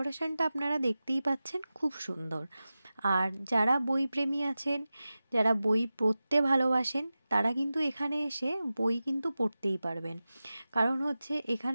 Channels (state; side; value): inverted; both; correlation -0.95